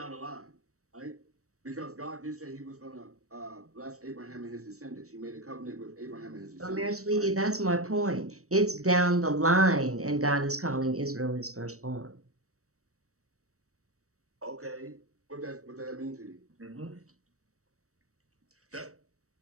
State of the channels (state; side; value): late; left; 0.65 ms